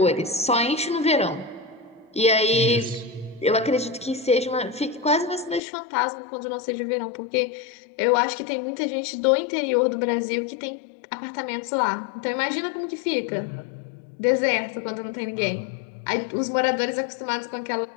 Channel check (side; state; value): right; drops out; at 5.6 s